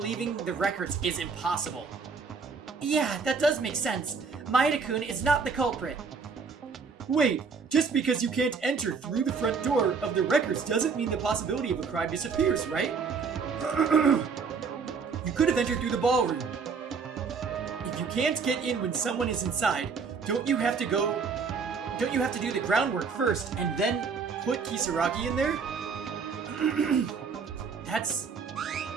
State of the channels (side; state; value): left; quieter; 5.3 dB